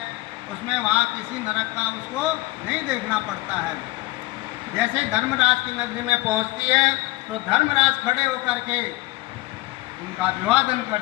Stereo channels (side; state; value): right; quieter; 20.0 dB